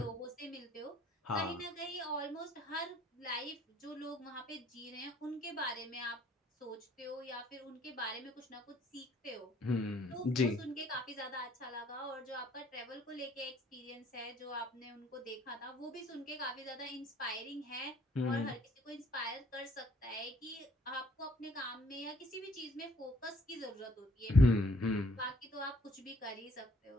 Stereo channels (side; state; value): both; normal; correlation 0.61